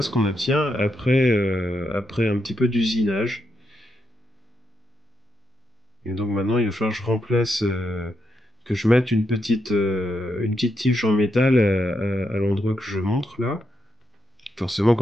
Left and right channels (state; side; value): normal; both; correlation 0.82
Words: ce qu'on obtient après un petit peu d'usinage. Et donc maintenant, il va falloir que je remplace, que je mette une petite tige en métal à l'endroit que je montre là. Forcément,